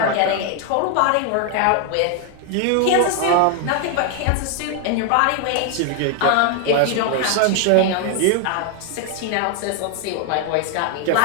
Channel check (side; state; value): both; different; correlation 0.00